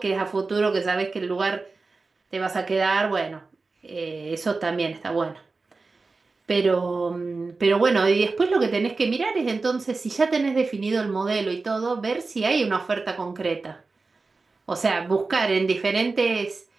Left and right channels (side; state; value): left; quieter; 3.9 dB